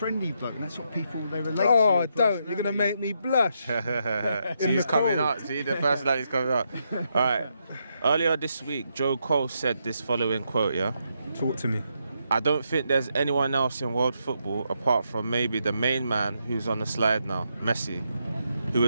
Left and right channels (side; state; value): both; inverted; correlation -0.80